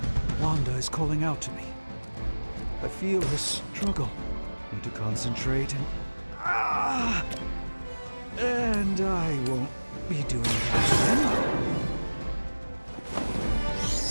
Wanda is calling out to me. I feel her struggle. Need to concentrate and I won't be doing that again.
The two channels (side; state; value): both; inverted; correlation -1.00